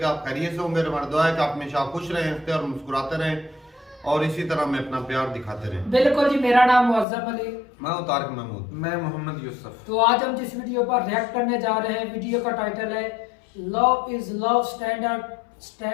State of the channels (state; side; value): drops out; right; at 7.1 s